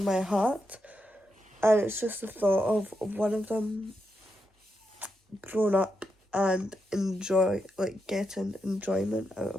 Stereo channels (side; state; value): both; normal; correlation 0.84